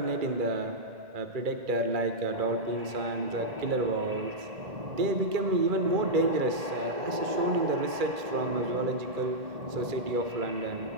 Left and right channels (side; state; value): left; late; 2.3 ms